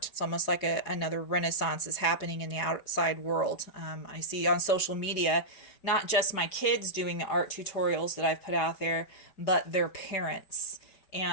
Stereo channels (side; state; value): right; late; 5.2 ms